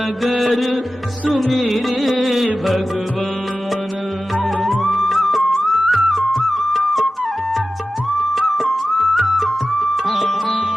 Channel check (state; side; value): normal; both; correlation 0.94